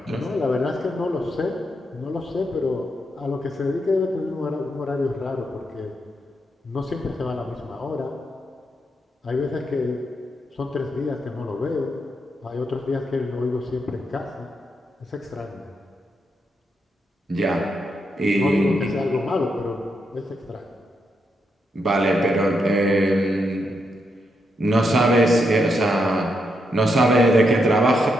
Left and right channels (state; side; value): normal; both; correlation 0.81